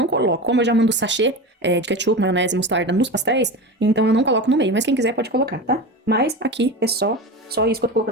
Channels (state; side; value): normal; both; correlation 0.26